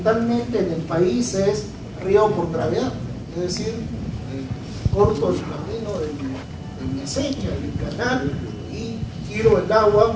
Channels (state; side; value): identical; both; correlation 1.00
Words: en el país es riego por gravedad, es decir, corto el camino de mi acequia, del canal, y tiro el